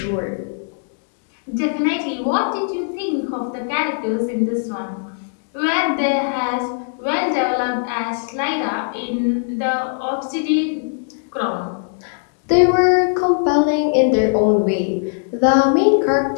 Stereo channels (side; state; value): right; silent; digital silence